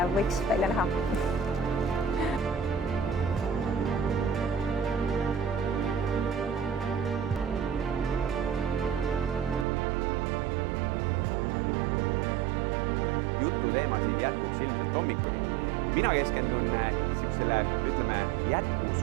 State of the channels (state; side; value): drops out; left; at 9.7 s